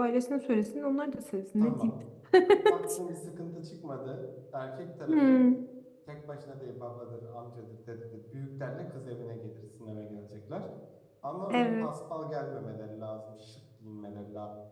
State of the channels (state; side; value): identical; both; correlation 1.00